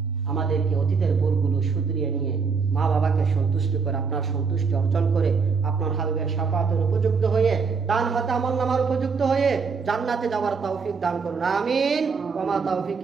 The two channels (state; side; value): quieter; left; 5.2 dB